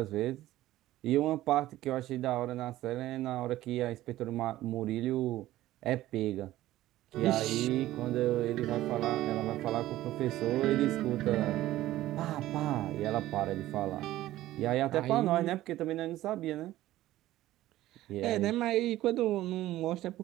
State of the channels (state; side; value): quieter; left; 15.2 dB